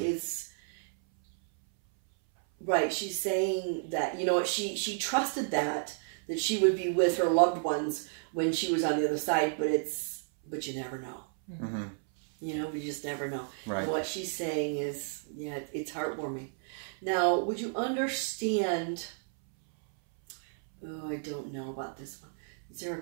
right. She's saying that, she trusted that she would be with her loved ones when she was on the other side, but you never know. Mm-hmm. We just never know. Right. And what she's saying is, it's heartwarming. Now, would you understand? Oh, I don't know about this one. Is there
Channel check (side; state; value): left; silent; 57 dB below the other